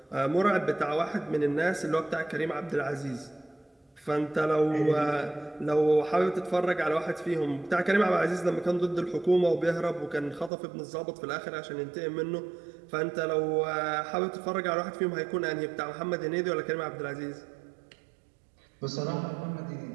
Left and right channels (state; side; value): drops out; left; at 10.5 s